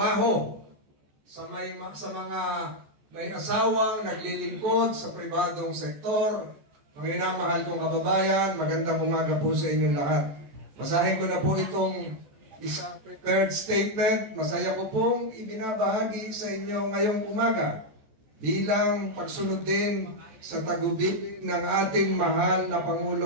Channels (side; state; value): left; late; 14 ms